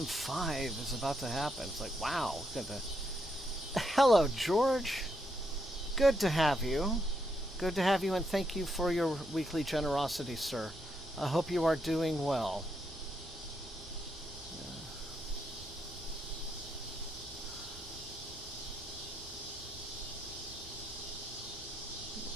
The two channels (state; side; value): normal; both; correlation 0.79